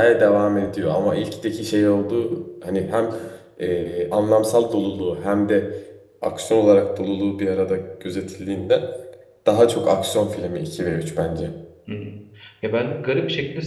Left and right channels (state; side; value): identical; both; correlation 1.00